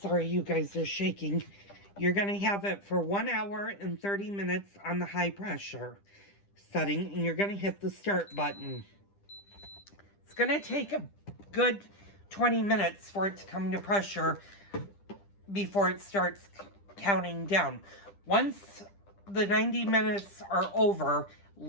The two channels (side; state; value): right; late; 10 ms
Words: you guys are shaking. You're going to have it for 1 hour and 30 minutes on the high pressure setting, and you're going to hit the start button. It's going to take a good 20 minutes for it to come to pressure before it starts counting down. Once the 90 minutes are over,